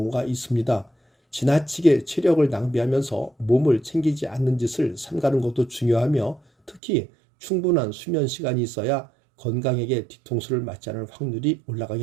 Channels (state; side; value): drops out; left; at 6.8 s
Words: 있습니다. 지나치게 체력을 낭비하면서 몸을 챙기지 않는 짓을 삼가는 것도 중요하며, 특히 충분한 수면 시간이 있어야 건강에게 뒤통수를 맞지 않을 확률이